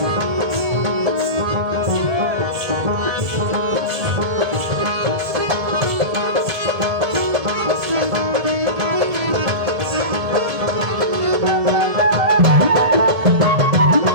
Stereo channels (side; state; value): left; late; 1.7 ms